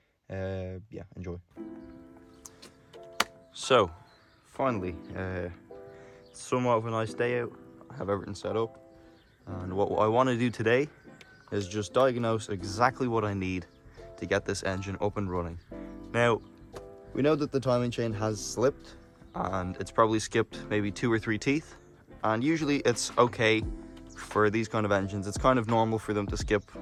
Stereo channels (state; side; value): identical; both; correlation 1.00